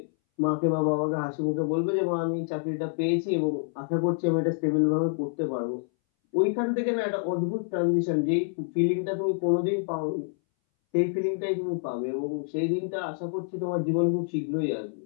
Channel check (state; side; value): silent; right; 60 dB below the other